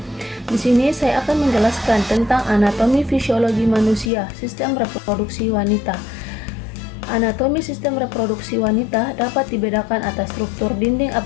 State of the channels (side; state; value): right; drops out; at 4.1 s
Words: Di sini saya akan menjelaskan tentang anatomi fisiologi manusia, sistem reproduksi wanita. Anatomi sistem reproduksi wanita dapat dibedakan atas struktur dinding